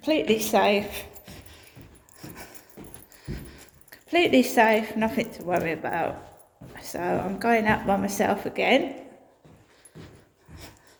safe, nothing to worry about. So I'm going out by myself again,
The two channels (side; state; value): both; identical; correlation 1.00